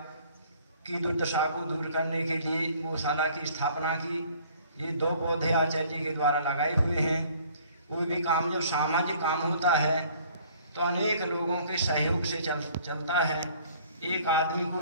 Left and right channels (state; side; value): inverted; both; correlation -0.56